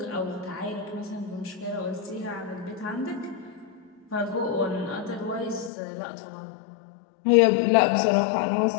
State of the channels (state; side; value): drops out; right; at 5.7 s